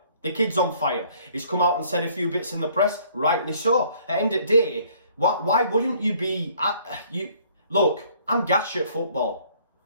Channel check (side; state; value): both; inverted; correlation -0.60